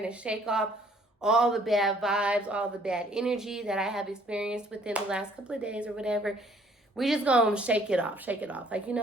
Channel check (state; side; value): normal; both; correlation 0.61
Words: to shake off all the bad vibes, all the bad energy that I have experienced within the last couple of days or whatever. We just going to shake it off. Like, you